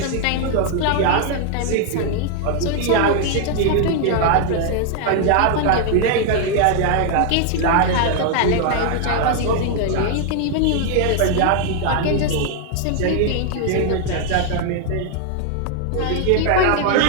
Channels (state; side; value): different; both; correlation 0.00